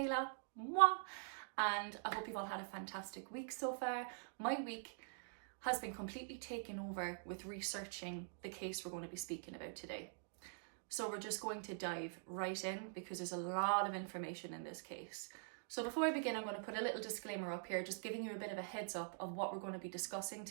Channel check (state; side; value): silent; left; digital silence